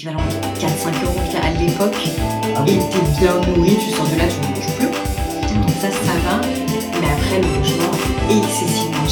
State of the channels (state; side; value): identical; both; correlation 1.00